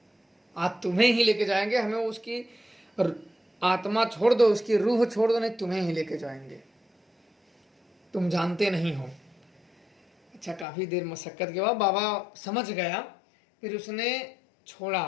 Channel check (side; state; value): right; drops out; at 10.7 s